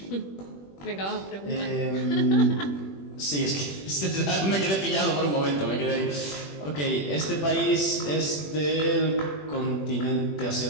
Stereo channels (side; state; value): right; late; 21 ms